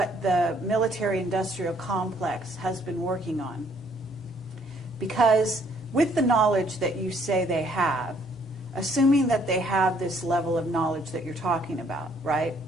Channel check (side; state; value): both; normal; correlation 0.64